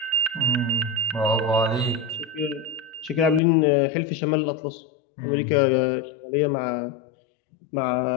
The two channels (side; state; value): right; drops out; at 3.4 s